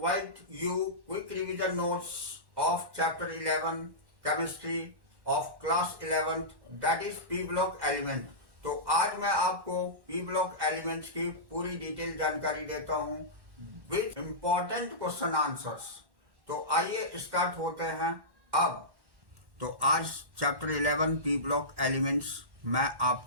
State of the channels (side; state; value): left; late; 1.1 ms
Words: you quick revision notes of chapter 11 chemistry of class 11th that is P block element. तो आज मैं आपको P block elements की पूरी detail जानकारी देता हूँ with important question answers. तो आइए स्टार्ट होते हैं अब। तो आज चैप्टर 11 पी ब्लॉक एलिमेंट्स मैं